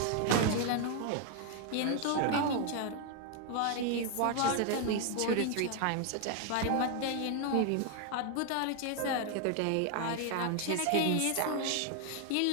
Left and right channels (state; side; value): different; both; correlation 0.01